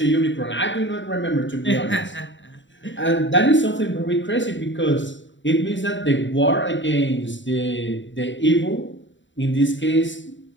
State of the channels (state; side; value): late; right; 0.54 ms